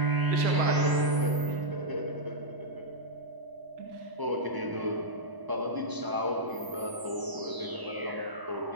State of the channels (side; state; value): left; late; 1.0 ms